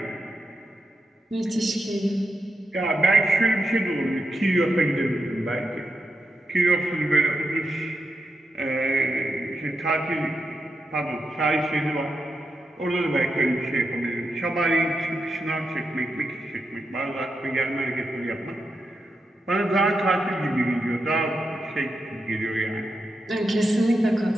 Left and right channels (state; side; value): normal; both; correlation 0.86